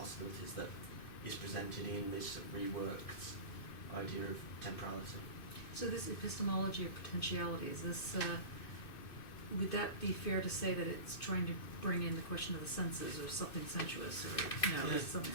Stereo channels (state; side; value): late; right; 2.6 ms